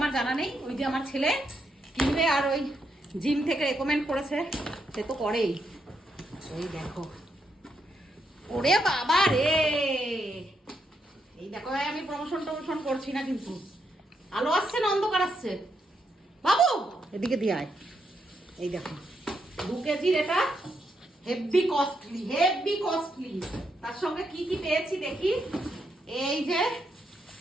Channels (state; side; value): normal; both; correlation 0.80